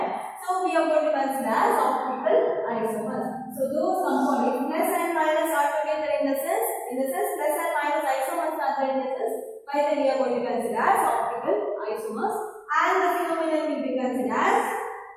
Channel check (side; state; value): both; identical; correlation 1.00